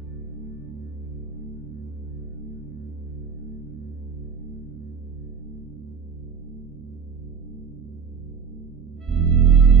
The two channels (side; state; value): left; quieter; 6.6 dB